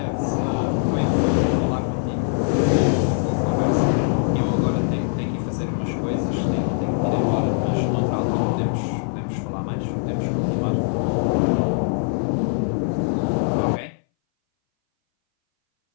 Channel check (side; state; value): right; silent; 61 dB below the other